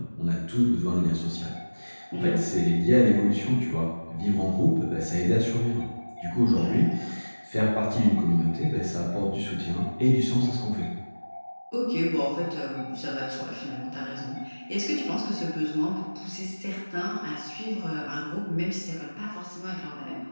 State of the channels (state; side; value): inverted; both; correlation -1.00